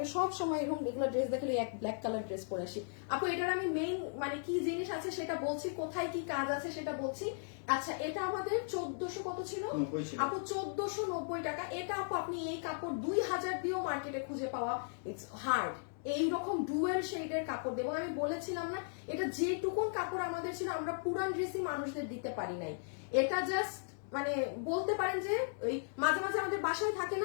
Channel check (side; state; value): right; silent; digital silence